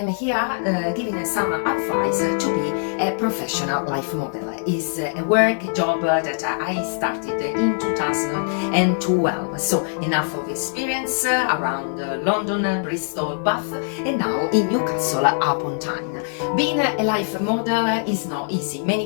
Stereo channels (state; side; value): silent; right; digital silence